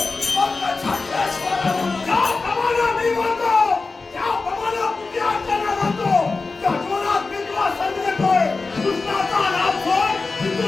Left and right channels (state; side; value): quieter; right; 3.9 dB